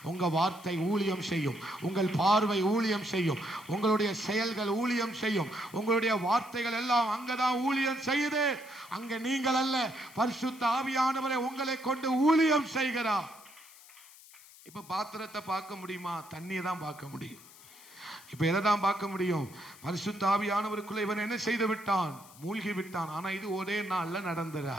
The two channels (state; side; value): noise; left; hiss, 21 dB below the sound